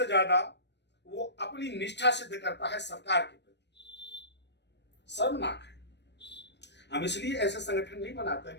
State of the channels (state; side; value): late; right; 0.50 ms